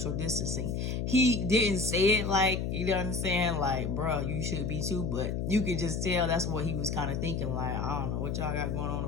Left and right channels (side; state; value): left; noise; hum, 1 dB below the sound